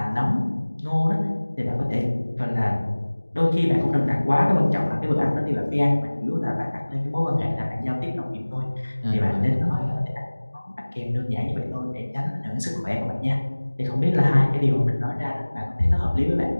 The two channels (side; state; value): both; inverted; correlation -1.00